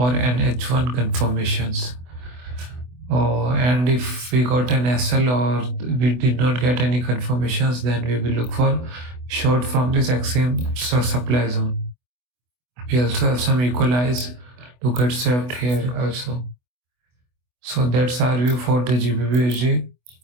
an H1 confirmations. And if we got an SL or we did not get any confirmations, then we will look for short from this extreme supply zone. We also have some equalize to get swept here also. So that's our view for the GBP/USD.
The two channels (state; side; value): late; left; 24 ms